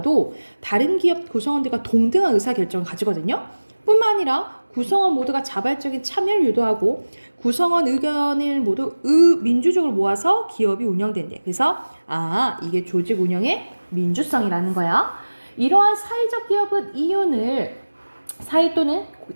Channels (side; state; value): both; inverted; correlation -1.00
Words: 다른 기업 구성원들과 동등한 의사결정을 가지거든요. 뿐만 아니라 구성원 모두가 자발적인 참여를 유도하고 구성원 의견을 모두 민주적으로 모아서 기업이 운영된대. 그래서 이게 조직 운영의 민주성이라는 거야. 이러한 사회적 기업은 이윤을 사회 또는